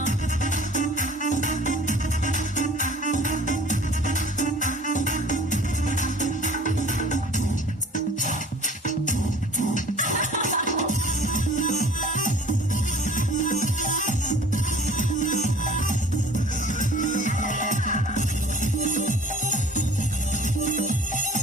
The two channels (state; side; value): normal; both; correlation 0.48